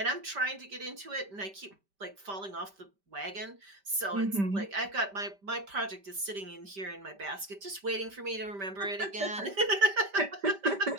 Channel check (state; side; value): late; left; 5.1 ms